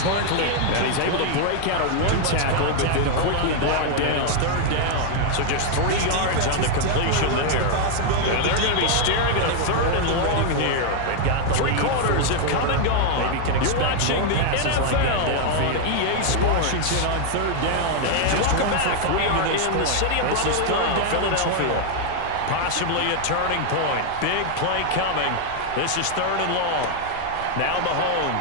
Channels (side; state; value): both; different; correlation 0.00